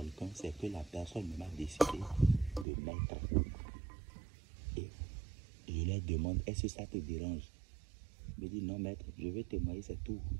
c'est que la personne m'a décidé de mettre. Et je leur demande, est-ce que ça te dérange? Je me dis, non maître, je vais témoigner, c'est tout.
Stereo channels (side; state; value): left; drops out; at 2.7 s